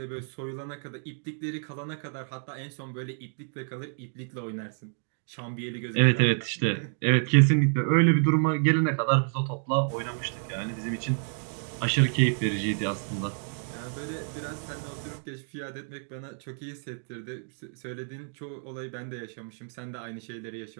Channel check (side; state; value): left; silent; 56 dB below the other